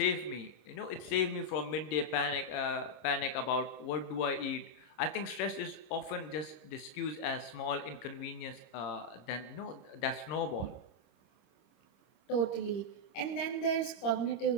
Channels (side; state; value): right; late; 26 ms